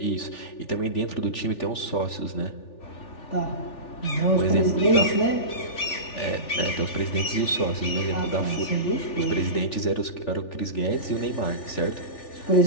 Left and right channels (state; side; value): late; right; 3.4 ms